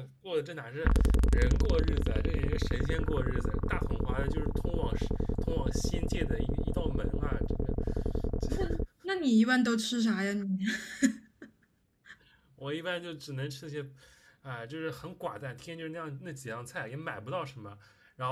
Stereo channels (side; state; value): both; identical; correlation 1.00